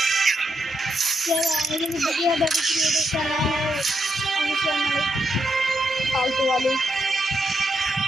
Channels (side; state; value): both; normal; correlation 0.82